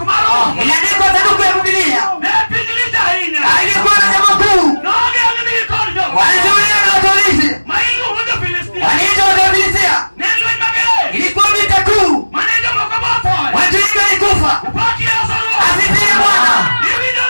maro. Iliandikwa sanduku ya Biblia. Nepinjilija hinya. Alikuwa na jambo kuu. Noge angini ikorjo. Walizuia na watolisi. Maingu huja Filistia. Waliitwa Wafilisti. Nenu imagere. Ilikuwa vita kuu. Manejo mokaboto. Watu wengi walikufa. Upaki ya salwa. Asifiwe Bwana. Ivinyo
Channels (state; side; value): inverted; both; correlation -1.00